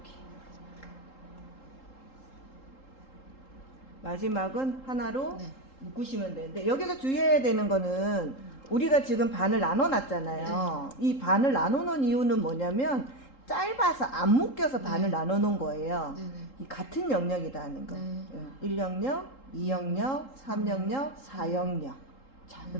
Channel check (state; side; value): late; right; 3.8 ms